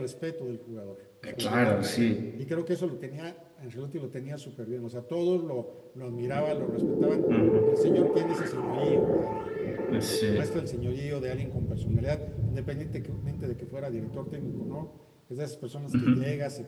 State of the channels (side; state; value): both; identical; correlation 1.00